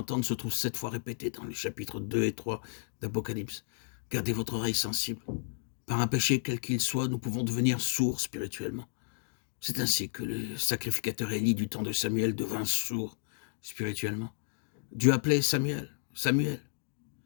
se trouve 7 fois répétée dans les chapitres 2 et 3 d'Apocalypse. Gardez votre oreille sensible. Par un péché quel qu'il soit, nous pouvons devenir sourds spirituellement. C'est ainsi que le sacrificateur Élie du temps de Samuel devint sourd spirituellement. Dieu appelait Samuel, Samuel.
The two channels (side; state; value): right; silent; digital silence